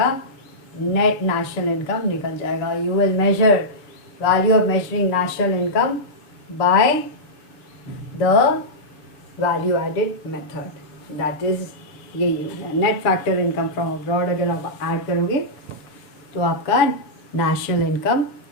नेट नेशनल इनकम निकल जाएगा। You will measure value of measuring national income by the value added method, that is यही net factor income from abroad. अगर आप ऐड करोगे तो आपका नेशनल इनकम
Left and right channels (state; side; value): late; right; 6.9 ms